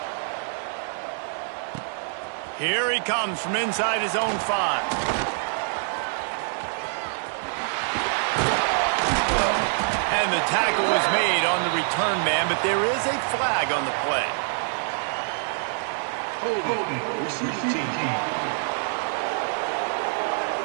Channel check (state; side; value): silent; left; digital silence